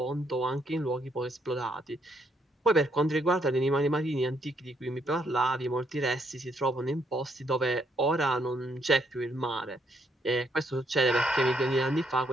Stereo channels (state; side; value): normal; both; correlation 0.72